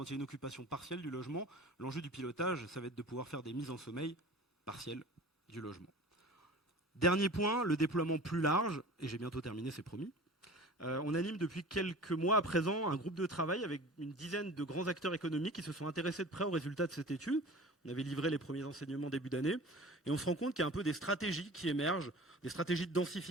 il y a une occupation partielle du logement, l'enjeu du pilotage, ça va être de pouvoir faire des mises en sommeil partielles du logement. Dernier point, le déploiement plus large, et j'ai bientôt terminé, c'est promis. On anime depuis quelques mois à présent un groupe de travail avec une dizaine de grands acteurs économiques qui se sont intéressés de près aux résultats de cette étude. On avait livré les premiers enseignements début d'année et on se rend compte qu'il y a un peu des stratégies qui émergent, des stratégies de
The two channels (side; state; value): both; normal; correlation 0.40